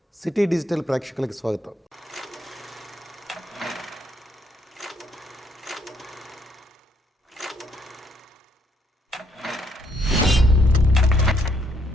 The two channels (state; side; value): normal; both; correlation 0.71